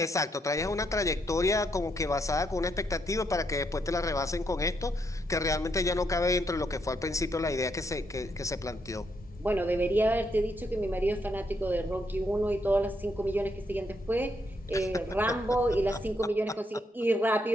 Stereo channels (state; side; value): normal; both; correlation 0.76